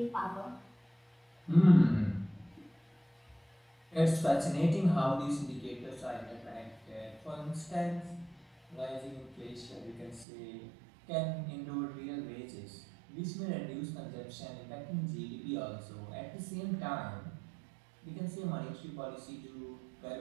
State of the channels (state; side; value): drops out; left; at 10.2 s